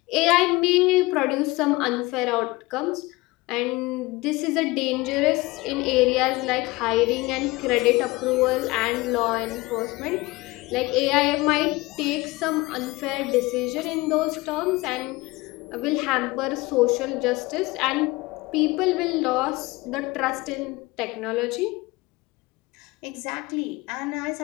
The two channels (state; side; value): quieter; right; 21.9 dB